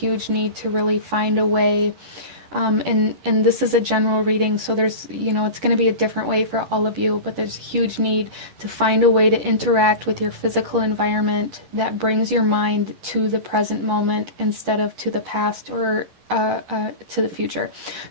need to really find a way. And this is a general reading, so there's, you know, it's going to be a different way for all of you, but there's a huge need to find a way to interact with your physical environment that brings your mind to the present moment instead of to the past or to the future.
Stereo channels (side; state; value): left; late; 10 ms